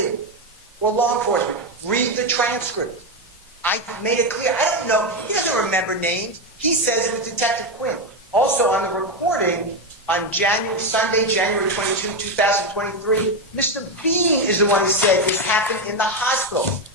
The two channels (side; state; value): both; normal; correlation 0.09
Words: or law enforcement. Read the transcript. I made it clear. I don't know. He doesn't remember names. He says it was Detective Quinn. Also on the recording, on Sunday, January 22, 2023, Mr. Bean is the one who said this happened in the hospital.